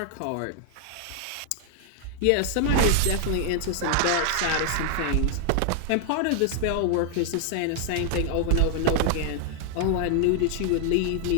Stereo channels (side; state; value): both; different; correlation 0.00